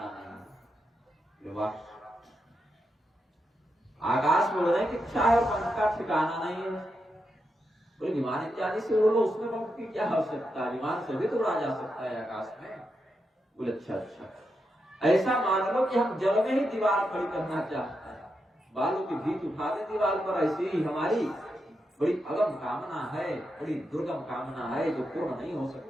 नहीं। वाह, आकाश में उड़ने की इच्छा है और पंख का ठिकाना नहीं है। बोले विमान इत्यादि से उड़ लो, उसमें पंख की क्या आवश्यकता है, विमान से भी तो उड़ा जा सकता है आकाश में। बोले अच्छा अच्छा, ऐसा मान लो कि हम जल में ही दीवार खड़ी करना चाहते हैं, बालू की भीत उठा दे दीवार पर, ऐसी ही हमारी बड़ी अगम कामना है, बड़ी दुर्गम कामना है जो पूर्ण नहीं हो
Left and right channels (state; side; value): normal; both; correlation 0.85